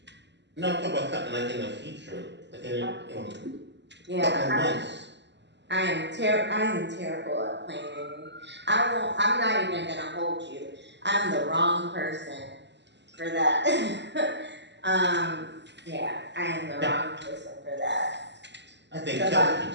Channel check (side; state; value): left; late; 0.51 ms